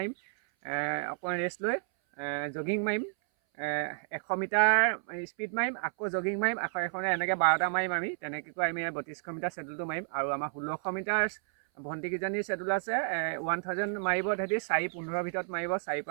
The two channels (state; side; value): silent; left; 57 dB below the other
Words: অকণমান ৰেষ্ট লৈ জগিং মাৰিম, 100 মিটাৰ স্পীড মাৰিম, আকৌ জগিং মাৰিম, আকৌ এখনে এনেকৈ 12টা মাৰিম। আমি তেনেকৈ আমি 3200 মিটাৰ শেডুলটো মাৰিম। আৰু আমাৰ 1600 মিটাৰ ভণ্টিকেইজনীৰ শেডুল আছে, 1000 মাৰিব তেহেঁতি 4:15 ভিতৰত মাৰিব, 4